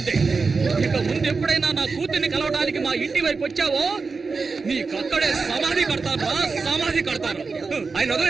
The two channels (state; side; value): quieter; left; 4.5 dB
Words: ఇక ముందు ఎప్పుడైనా నా కూతుర్ని కలవడానికి మా ఇంటి వైపు వచ్చావో నీకక్కడే సమాధి కడతారా, సమాధి కడతారు. ఆయన